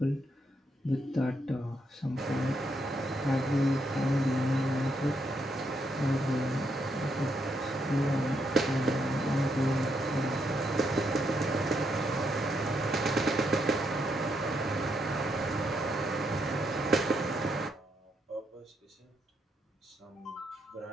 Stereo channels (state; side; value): normal; both; correlation 0.78